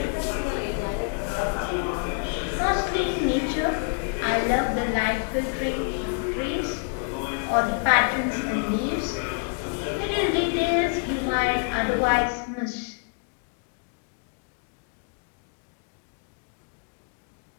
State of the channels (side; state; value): right; quieter; 38.3 dB